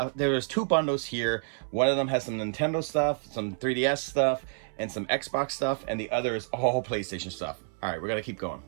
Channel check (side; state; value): left; silent; 59 dB below the other